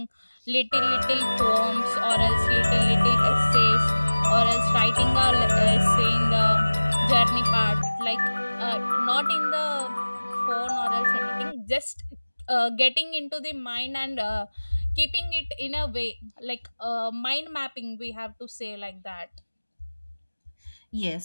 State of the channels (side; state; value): both; inverted; correlation -1.00